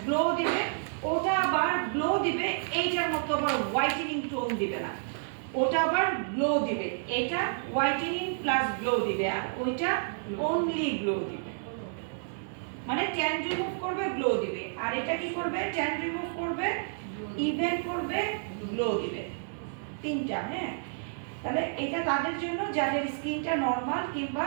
গ্লো দিবে, ওটা আবার গ্লো দিবে এইটার মতো আবার হোয়াইটেনিং টোন দিবে না, ওটা আবার গ্লো দিবে। এটা হোয়াইটেনিং প্লাস গ্লো দিবে, আর ওইটা অনলি গ্লো দিবে, মানে ট্যান রিমুভ করবে, গ্লো দিবে। আর এটা কি করবে? ট্যান রিমুভ করবে, ইভেন করবে, গ্লো দিবে, তিনটা। হ্যাঁ, তাহলে এটা তাদের জন্য যাদের স্কিনটা নরমাল কিংবা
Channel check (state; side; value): silent; left; 58 dB below the other